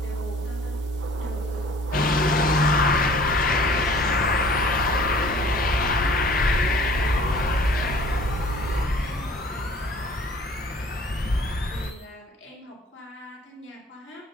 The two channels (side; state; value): both; normal; correlation 0.51